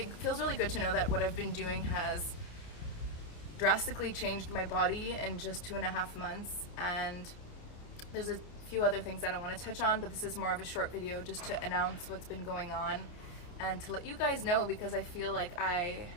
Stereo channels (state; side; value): late; right; 29 ms